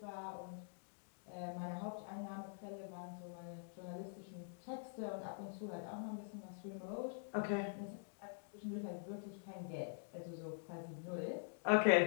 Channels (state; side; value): silent; right; digital silence